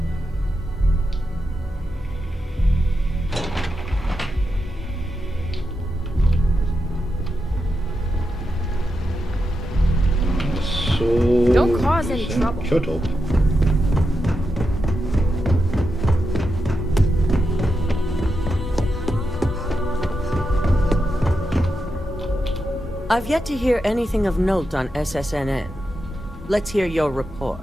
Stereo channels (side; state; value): both; normal; correlation 0.87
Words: Don't cause any trouble. Shut up. I've yet to hear anything of note on SSNN. Let's hear your